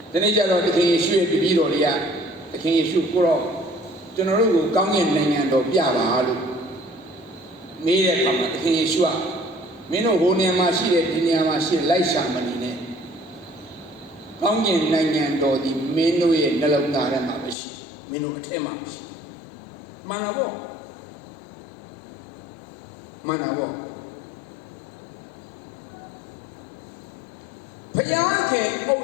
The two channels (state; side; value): drops out; right; at 17.6 s